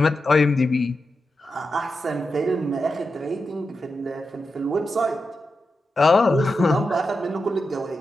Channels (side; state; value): both; normal; correlation 0.89